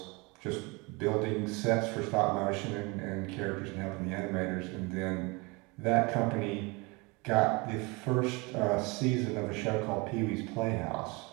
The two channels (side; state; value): left; quieter; 27.1 dB